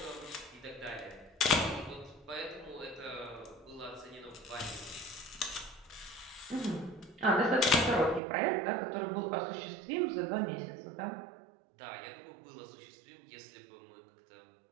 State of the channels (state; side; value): drops out; left; at 8.2 s